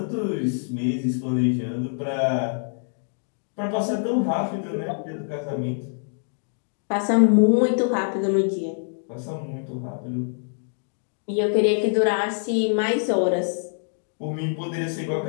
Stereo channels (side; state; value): right; silent; digital silence